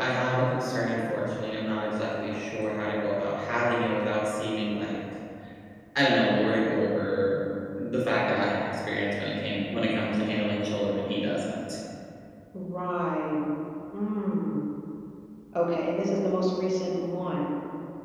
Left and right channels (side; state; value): both; identical; correlation 1.00